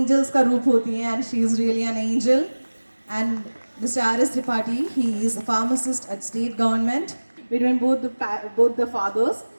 का रूप होती हैं and she is really an angel. And Mr. R.S. Tripathi, he is a pharmacist at state government between both the fathers.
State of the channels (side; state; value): both; inverted; correlation -1.00